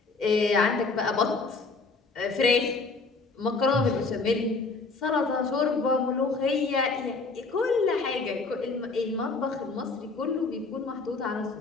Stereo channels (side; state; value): right; quieter; 3.9 dB